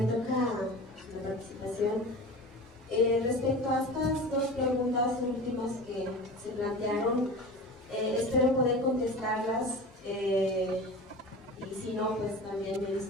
toca la participación. Respecto a estas dos preguntas últimas que se plantearon, espero poder contestarlas, y si no, pues también me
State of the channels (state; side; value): normal; both; correlation 0.34